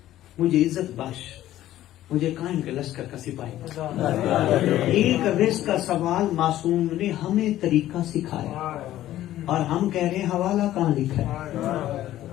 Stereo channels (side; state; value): right; quieter; 13.6 dB